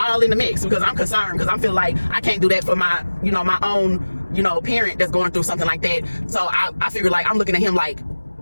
in the mix because I'm concerned, because I feel like I can't do that for my, my own, parent that's going through something like that. So I figure like I'm looking at him like,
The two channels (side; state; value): both; inverted; correlation -1.00